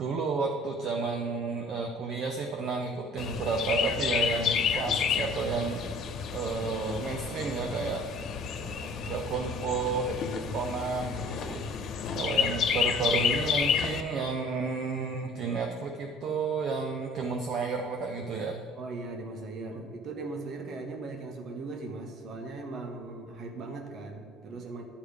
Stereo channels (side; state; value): both; normal; correlation 0.50